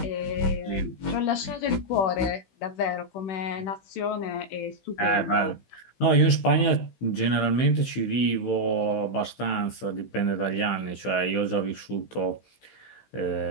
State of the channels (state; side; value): late; right; 16 ms